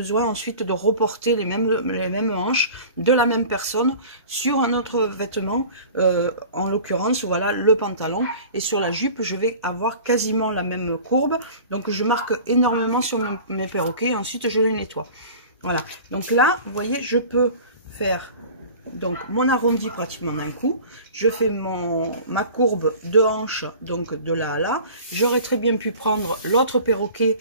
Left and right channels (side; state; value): both; inverted; correlation -0.41